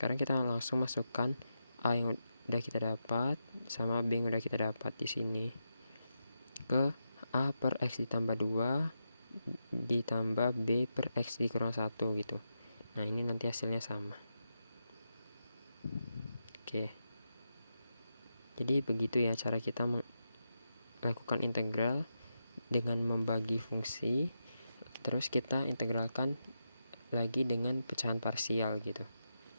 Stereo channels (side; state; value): both; inverted; correlation -0.87